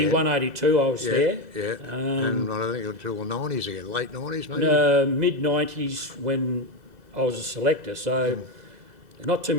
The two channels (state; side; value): late; left; 2.0 ms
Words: 82 I was there. Yeah. And I think until the 90s again, late 90s maybe. Mid 90s when I was a selector. So not too